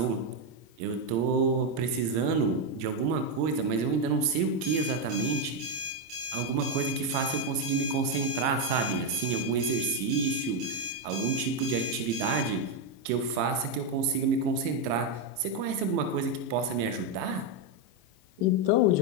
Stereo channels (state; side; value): late; left; 26 ms